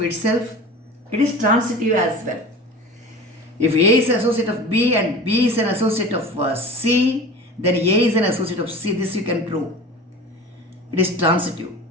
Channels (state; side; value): normal; both; correlation 0.37